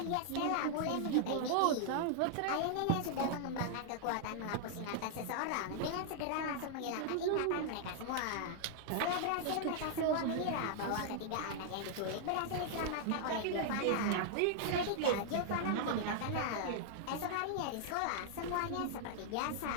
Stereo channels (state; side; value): different; both; correlation -0.01